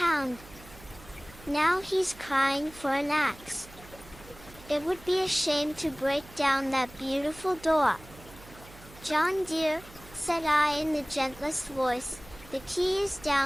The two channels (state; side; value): noise; right; hum, 20 dB below the sound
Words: Now he's crying for an axe. It would be a shame to break down that beautiful door. John dear, said I in the gentlest voice, the key is